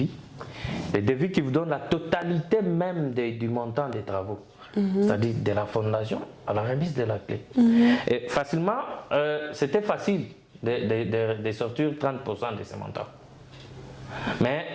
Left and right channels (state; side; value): identical; both; correlation 1.00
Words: Les devis qui vous donnent la totalité même du montant des travaux. C'est-à-dire de la fondation à la remise de la clé. Et facilement, c'était facile de sortir 30% de ce montant. Mais